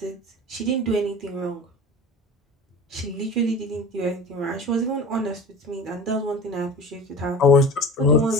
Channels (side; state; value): both; normal; correlation 0.36